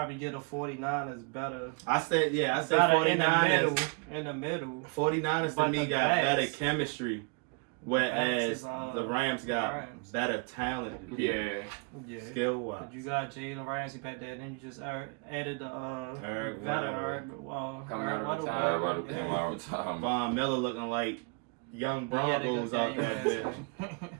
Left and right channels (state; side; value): quieter; left; 34.1 dB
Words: get a 49ers better. I say 49ers in the middle. 49ers to me got better chemistry, whereas the Rams got better talent. Yeah. Skill wise. You got Jalen Ramsey back there, and then you just added the coming out of time. Von Miller looking like young Broncos out there.